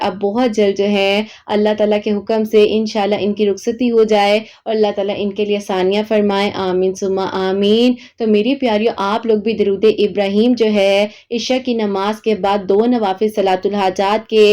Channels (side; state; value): both; identical; correlation 1.00